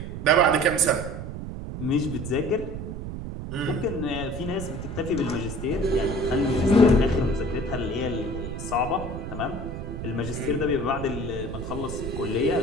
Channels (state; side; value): noise; right; rumble, 7 dB below the sound